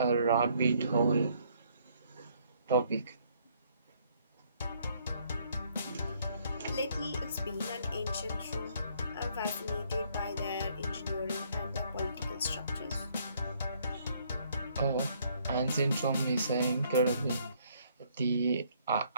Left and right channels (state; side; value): inverted; both; correlation -0.66